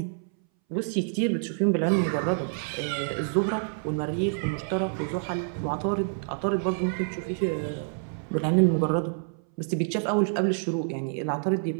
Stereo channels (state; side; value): silent; left; 60 dB below the other